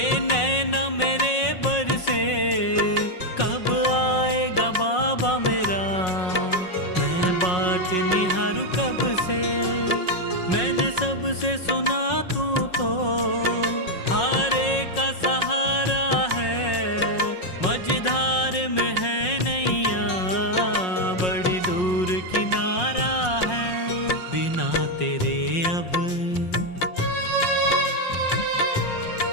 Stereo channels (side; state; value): right; late; 5.5 ms